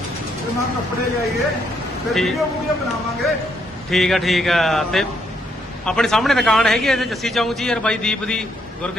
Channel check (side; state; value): both; normal; correlation 0.74